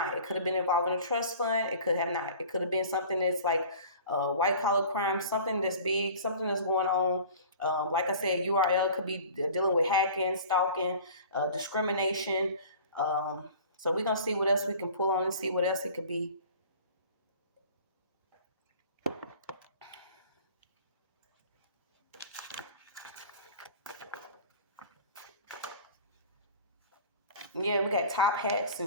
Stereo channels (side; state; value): both; inverted; correlation -0.43